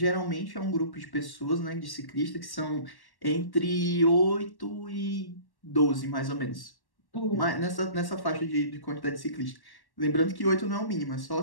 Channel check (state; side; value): late; right; 1.1 ms